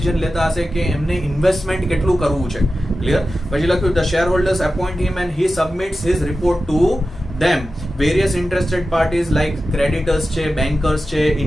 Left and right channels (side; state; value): both; normal; correlation 0.93